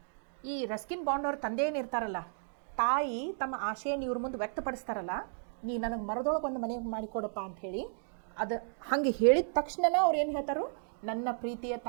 ಈ ರಸ್ಕಿನ್ ಬಾಂಡ್ ಅವ್ರ ತಂದೆ ಏನಿರ್ತಾರಲ್ಲ, ತಾಯಿ ತಮ್ಮ ಆಸೆಯನ್ನು ಇವ್ರ ಮುಂದೆ ವ್ಯಕ್ತಪಡಿಸ್ತಾರಲ್ಲ, ನೀ ನನಗೆ ಮರದೊಳಗೆ ಒಂದು ಮನೆ ಮಾಡಿಕೊಡಪ್ಪ ಅಂಥೇಳಿ. ಅದು ಹಾಗೆ ಹೇಳಿದ ತಕ್ಷಣ ಅವ್ರು ಏನು ಹೇಳ್ತಾರೋ, ನನ್ನ ಪ್ರೀತಿಯ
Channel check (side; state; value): left; silent; digital silence